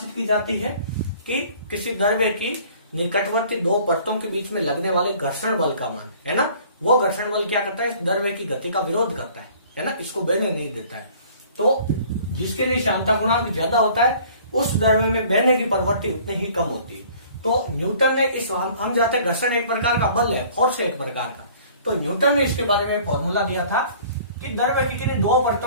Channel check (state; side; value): inverted; both; correlation -0.52